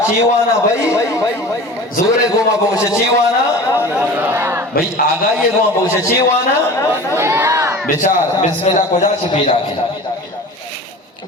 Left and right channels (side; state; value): both; normal; correlation 0.37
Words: چیوانا بھائی زورے گوما بوش چیوانا بھائی آگائی گوما بوش چیوانا بچار بسم اللہ کو جا چھپی راکی